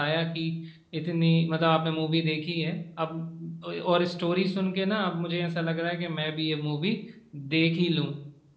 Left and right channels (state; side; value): identical; both; correlation 1.00